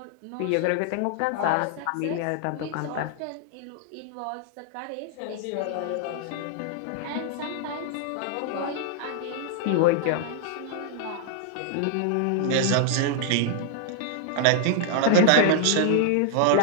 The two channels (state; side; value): different; both; correlation 0.00